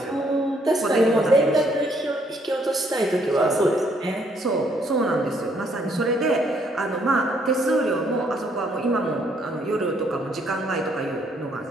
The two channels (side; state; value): both; normal; correlation 0.68